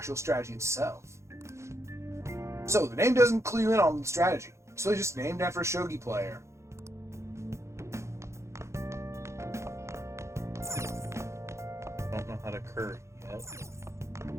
strategy itself. So, the name doesn't clue you in on the strategy. So it's just named after a shogi player. I don't know how to curry yet.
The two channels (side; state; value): left; late; 0.14 ms